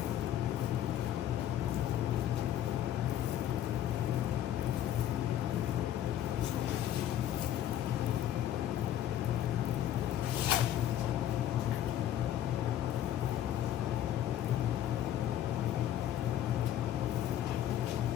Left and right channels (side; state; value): right; quieter; 11.4 dB